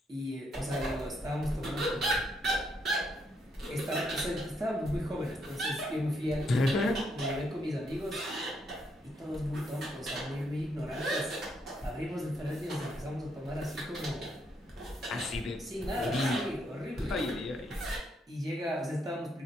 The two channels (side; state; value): both; normal; correlation 0.75